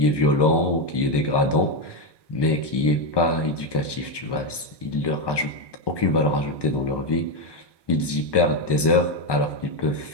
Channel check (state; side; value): late; right; 1.2 ms